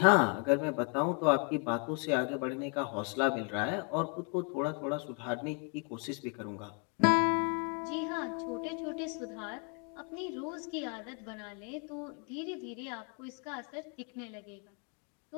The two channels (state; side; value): quieter; right; 34.8 dB